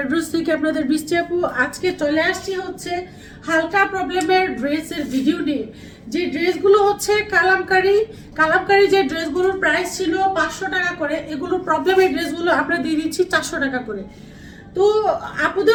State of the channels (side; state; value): both; identical; correlation 1.00